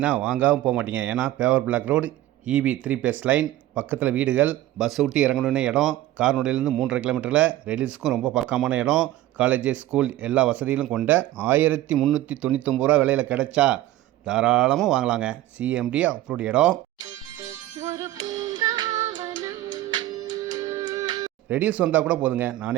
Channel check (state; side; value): quieter; left; 14.8 dB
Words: வாங்காமல் போக மாட்டீங்க. ஏன்னா paver block road, EB 3 phase line, பக்கத்தில் வீடுகள், பஸ் விட்டு இறங்கணுன்னு இடம், கார்னோடையிலேருந்து 3.5 கிலோமீட்டரில், ரெடில்ஸுக்கும் ரொம்ப பக்கமான இடம், காலேஜ், ஸ்கூல் எல்லா வசதிகளும் கொண்ட 1399 ரூபா விலையில் கிடைச்சா தாராளமாக வாங்கலாங்க. சிஎம்டி அப்ரூவ்ட் இடம். ரெடில்ஸ் வந்தால் கூட போதுங்க,